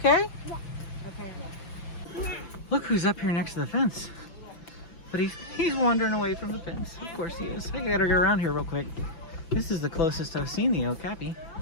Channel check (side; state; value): right; late; 5.9 ms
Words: Yeah. Okay. Look who's up here next to the fence. But he's wandering away from the fence. Of course he is. I gotta get around here real quick. This is the closest I've seen the okapi.